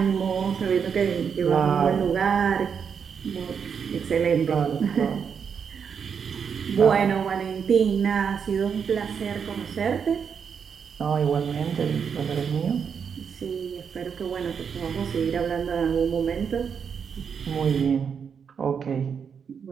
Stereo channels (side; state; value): left; quieter; 6.8 dB